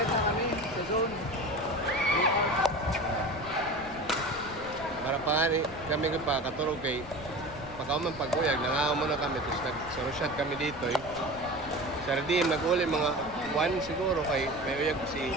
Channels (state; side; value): noise; left; rumble, 15 dB below the sound